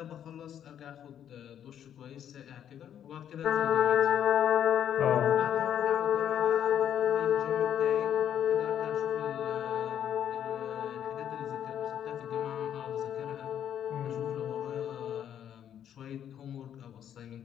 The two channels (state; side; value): quieter; right; 9.7 dB